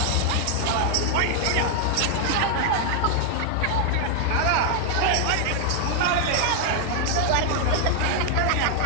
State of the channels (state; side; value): different; both; correlation 0.00